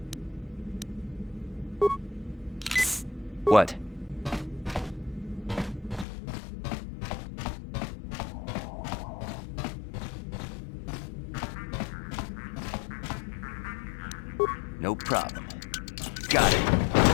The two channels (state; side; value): drops out; right; at 6.1 s